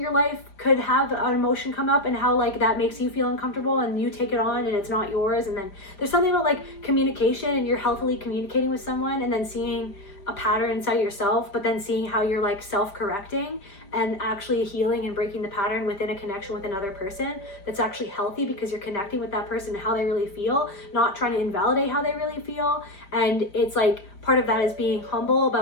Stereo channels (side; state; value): right; late; 5.0 ms